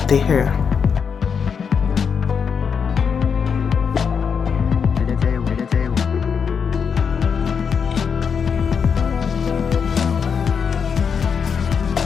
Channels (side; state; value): right; quieter; 6.5 dB